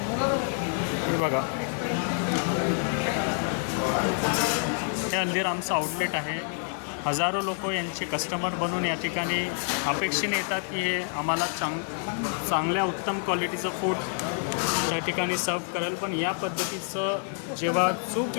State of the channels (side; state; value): right; silent; 56 dB below the other